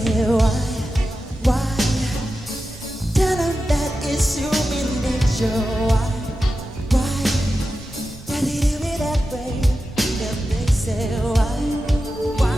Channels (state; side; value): normal; both; correlation 0.92